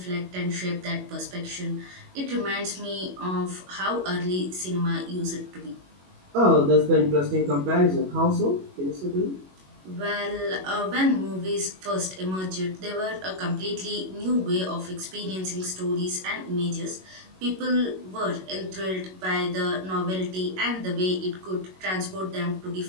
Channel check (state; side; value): late; left; 21 ms